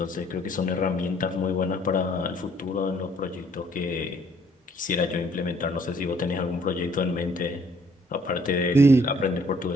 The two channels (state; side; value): normal; both; correlation 0.63